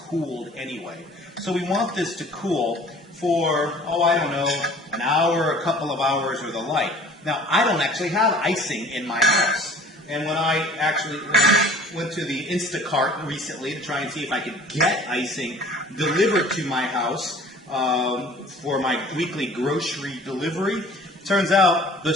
anyway. So we want this to cool for, I don't know, an hour, a couple of hours, or the like. Now, I don't actually have icing in my house. And when I actually went to the Instacart recently to try and see if I could get icing delivered to my house for my weekly grocery delivery, turns out the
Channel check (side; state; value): both; normal; correlation 0.49